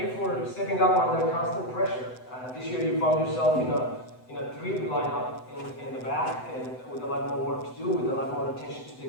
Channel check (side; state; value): right; late; 7.9 ms